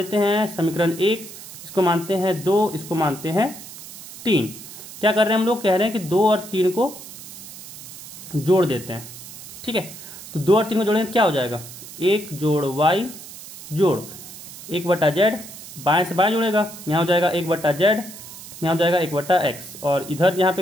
हैं समीकरण 1, इसको मानते हैं 2, इसको मानते हैं 3। क्या कर रहे हैं हम लोग, कह रहे हैं कि 2 और 3 को जोड़ देते हैं। ठीक है, तो 2 और 3 को जोड़ेंगे तो क्या हो जाएगा, 1 जोड़ y जोड़ 1/z, बाएं से बाएं जुड़ेगा, यहाँ हो जाएगा 1/z, यहाँ हो जाएगा 1/x, और इधर यहाँ पे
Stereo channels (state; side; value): noise; right; hiss, 14 dB below the sound